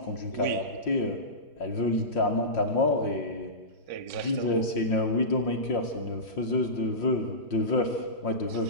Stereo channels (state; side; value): late; right; 5.7 ms